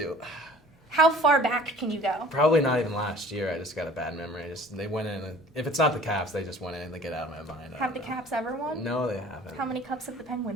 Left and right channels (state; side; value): normal; both; correlation 0.48